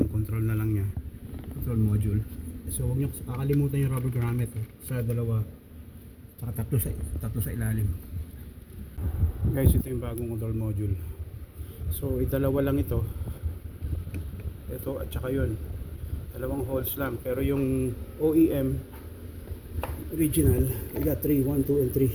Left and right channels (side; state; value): both; identical; correlation 1.00